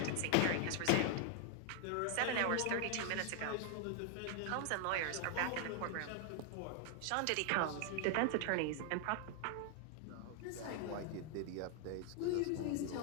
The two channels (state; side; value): different; both; correlation 0.00